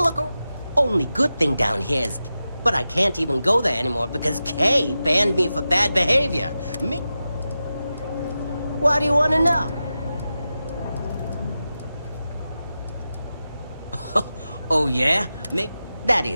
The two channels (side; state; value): both; inverted; correlation -0.92